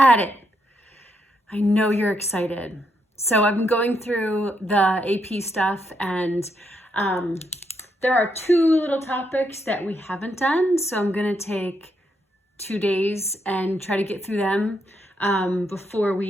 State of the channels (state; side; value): normal; both; correlation 0.78